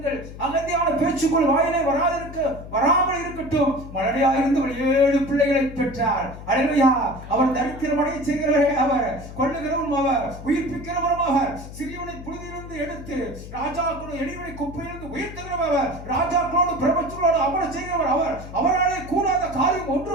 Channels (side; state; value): left; noise; hum, 13 dB below the sound